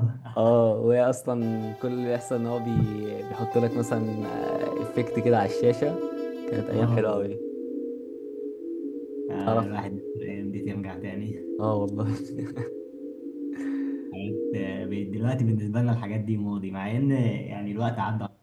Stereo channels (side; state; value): both; identical; correlation 1.00